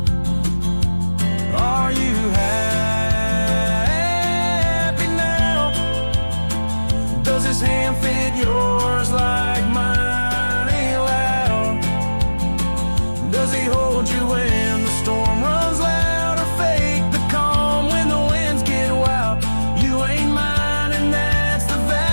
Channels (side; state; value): both; inverted; correlation -1.00